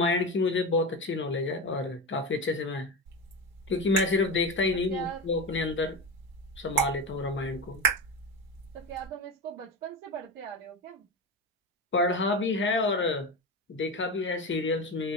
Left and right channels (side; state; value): both; normal; correlation 0.22